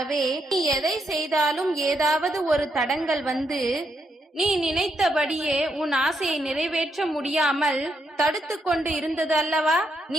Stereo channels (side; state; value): both; normal; correlation 0.79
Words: நீ எதை செய்தாலும் ஏதாவது ஒரு தடங்கள் வந்து நீ நினைத்தபடியே உன் ஆசையை நிறைவேற்ற முடியாமல் தடுத்து கொண்டு இருந்தது அல்லவா?